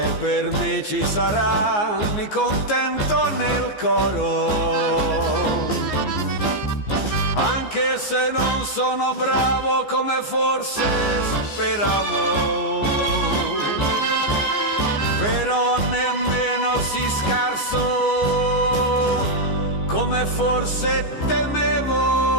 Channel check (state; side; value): late; right; 14 ms